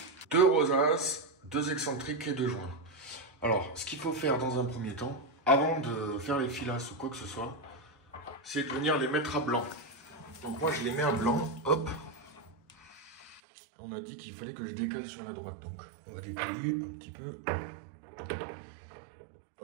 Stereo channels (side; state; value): left; drops out; at 13.4 s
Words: Deux rosaces, deux excentriques et deux joints. Alors, ce qu'il faut faire dans un premier temps, avant de faire les filasses ou quoi que ce soit, c'est de venir les mettre à blanc. Donc moi, je les mets à blanc, hop. On a dit qu'il fallait que je décale sur la droite, donc on va décaler un petit peu.